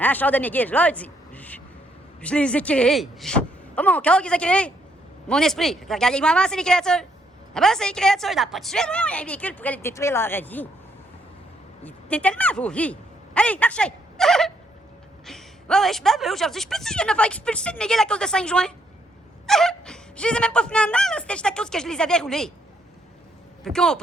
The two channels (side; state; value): both; normal; correlation 0.73